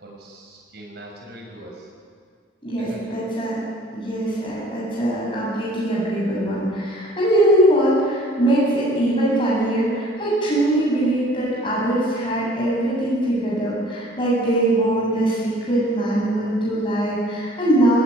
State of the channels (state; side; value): normal; both; correlation 0.53